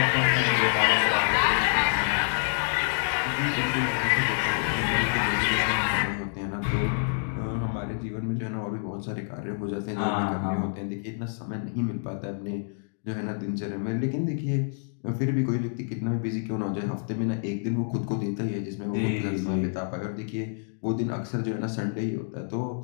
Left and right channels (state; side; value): silent; right; digital silence